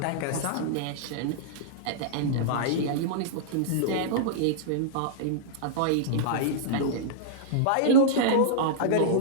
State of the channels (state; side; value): different; both; correlation -0.02